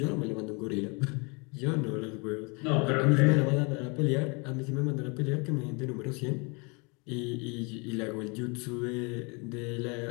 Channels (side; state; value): right; quieter; 31.2 dB